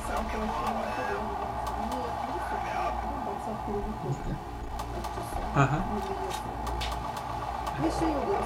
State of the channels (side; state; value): both; identical; correlation 1.00